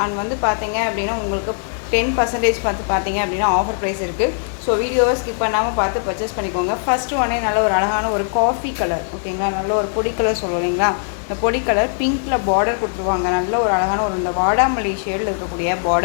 அண்ட் வந்து பார்த்தீங்க அப்படின்னா உங்களுக்கு 10% பார்த்தீங்க அப்படின்னா ஆஃபர் ப்ரைஸ் இருக்குது. ஸோ வீடியோவை ஸ்கிப் பண்ணாமல் பார்த்து பர்ச்சேஸ் பண்ணிக்கோங்க. ஃபஸ்ட்டு உடனே நல்ல ஒரு அழகான ஒரு காஃபி கலர், ஓகேங்களா, நல்ல ஒரு பொடி கலர் சொல்லுவோம் இல்லைங்களா, இந்த பொடி கலர் பிங்க்கில் பார்டர் கொடுத்துருவாங்க. நல்ல ஒரு அழகான ஒரு இந்த வாடாமல்லி ஷேடில் இருக்கக்கூடிய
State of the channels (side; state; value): right; silent; digital silence